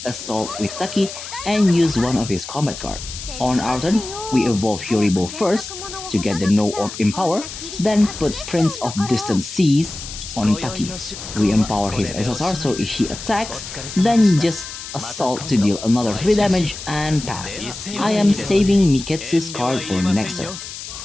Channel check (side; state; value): left; noise; hiss, 10 dB below the sound